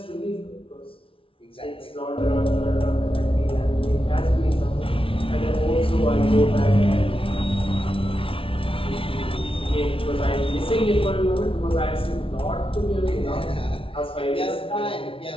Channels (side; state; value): right; late; 0.26 ms